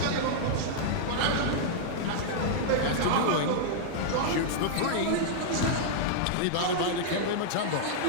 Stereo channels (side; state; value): both; different; correlation -0.01